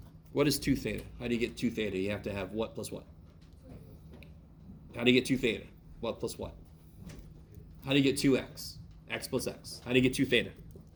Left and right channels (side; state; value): both; identical; correlation 1.00